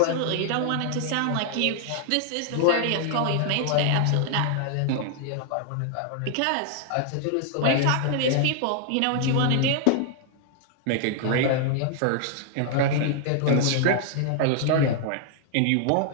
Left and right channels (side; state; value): both; different; correlation 0.00